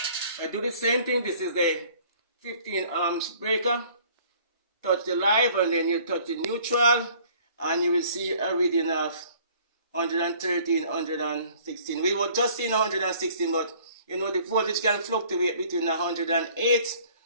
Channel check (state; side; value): inverted; both; correlation -0.55